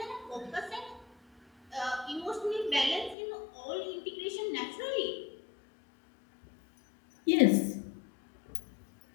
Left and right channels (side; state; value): right; drops out; at 3.2 s